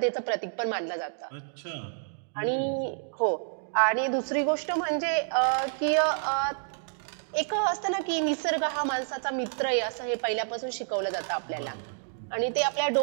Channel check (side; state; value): left; silent; digital silence